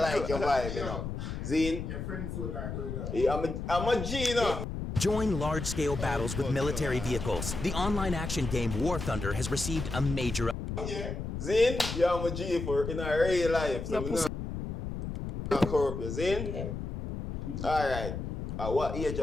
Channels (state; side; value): noise; left; rumble, 5 dB below the sound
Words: your vibe, you know. Zine, Your friends will like that. yeah, I'm a G, you know. Join large-scale battles with military vehicles. The online action game War Thunder has received a major... Zine, yeah, I'm a G for in our real life, so we not corrupt you. Zine? Alright. At what age